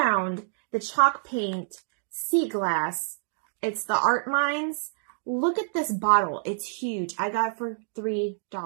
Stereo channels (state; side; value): silent; left; digital silence